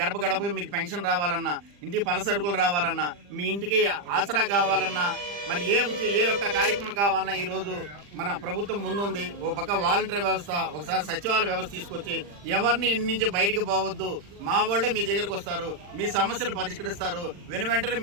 గడపకి మీకు పెన్షన్ రావాలన్నా, ఇంటికి పలసరుకులు రావాలన్నా, మీ ఇంటికి ఆసరా కావాలన్నా, మరి ఏ ఒక్క కార్యక్రమం కావాలన్నా ఈరోజు మన ప్రభుత్వం ముందుంది. ఒక పక్క వాలంటీర్ వ్యవస్థ, ఒకసారి సచివాలయ వ్యవస్థ తీసుకొచ్చి ఎవరిని ఇంటి నుంచి బయటికి పోవద్దు, మా వాళ్ళే మీ దగ్గరకు వస్తారు, మీ సమస్యలు పరిష్కరిస్తారు, వెంటనే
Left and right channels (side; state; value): left; late; 40 ms